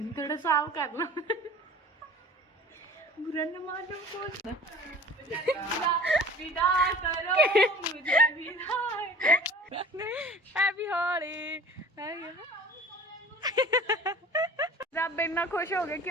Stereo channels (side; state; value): both; normal; correlation 0.44